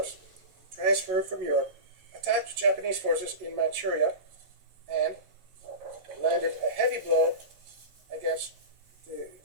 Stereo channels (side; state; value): left; late; 11 ms